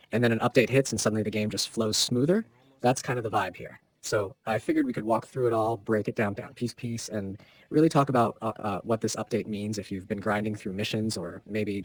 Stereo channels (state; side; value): identical; both; correlation 1.00